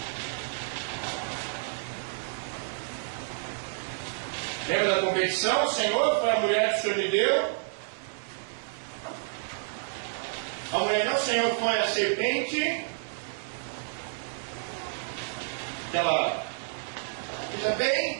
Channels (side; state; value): left; silent; 58 dB below the other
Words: Lembra da competição? O Senhor, para a mulher que o Senhor me deu. A mulher não, o Senhor, foi a serpente. Ela veja bem,